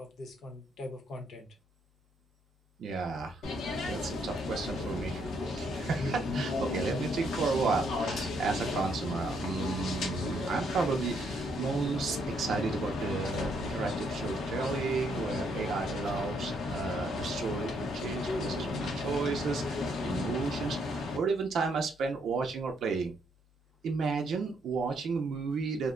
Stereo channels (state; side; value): normal; both; correlation 0.72